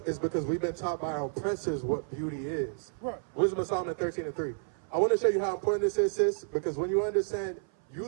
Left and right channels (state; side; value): silent; left; 57 dB below the other